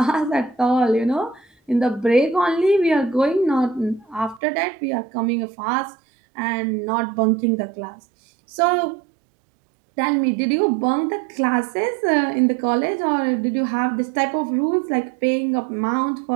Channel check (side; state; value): left; drops out; at 4.4 s